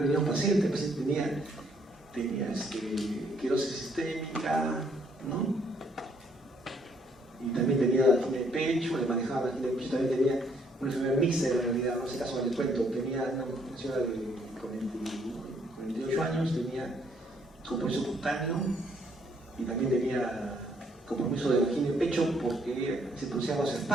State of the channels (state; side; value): normal; both; correlation 0.68